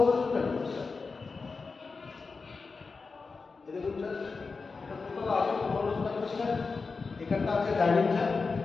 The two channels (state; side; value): quieter; right; 4.4 dB